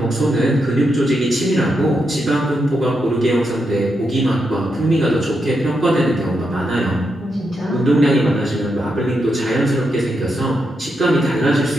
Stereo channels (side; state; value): both; normal; correlation 0.83